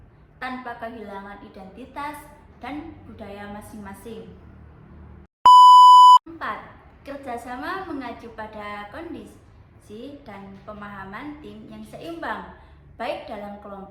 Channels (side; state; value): both; identical; correlation 1.00